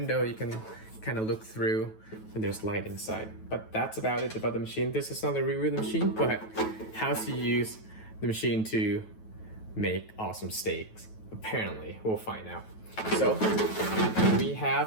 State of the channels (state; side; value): late; right; 9.2 ms